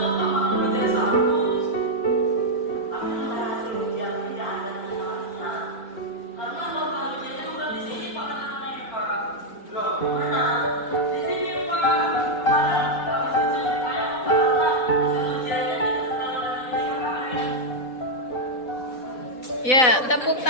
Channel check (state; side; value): late; right; 3.9 ms